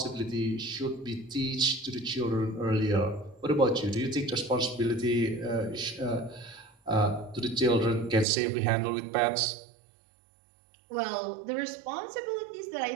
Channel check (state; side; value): drops out; left; at 8.2 s